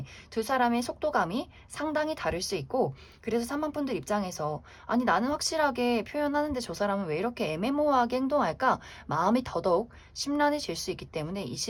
두 사람의 속도감이 상당히 다를 수 있고, 그래서 3번 분들 입장에서 아니 나는 확실하게 표현하는데 저 사람은 왜 이렇게 애매모호하게 행동할까? 마음이 더더욱 심란해질 수 있기 때문에 이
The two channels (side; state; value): both; identical; correlation 1.00